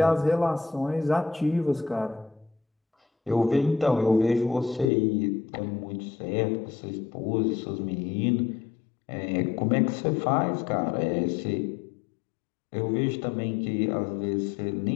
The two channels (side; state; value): right; drops out; at 4.9 s